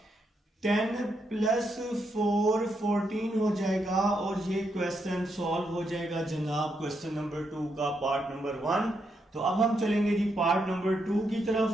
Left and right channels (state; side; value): normal; both; correlation 0.80